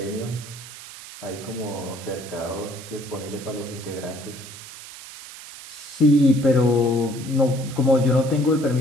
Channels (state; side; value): noise; right; hiss, 15 dB below the sound